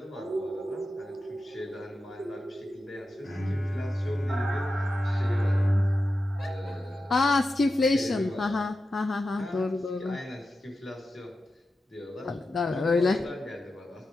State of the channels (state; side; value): normal; both; correlation 0.91